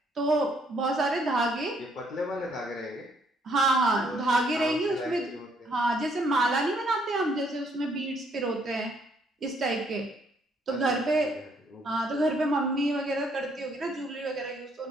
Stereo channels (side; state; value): both; normal; correlation 0.68